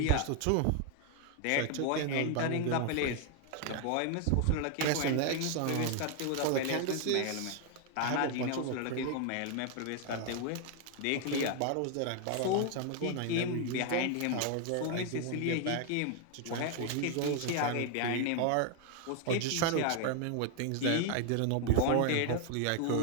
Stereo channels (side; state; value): both; different; correlation 0.00